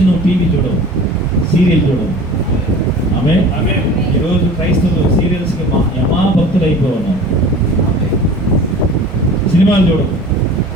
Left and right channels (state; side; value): normal; both; correlation 0.41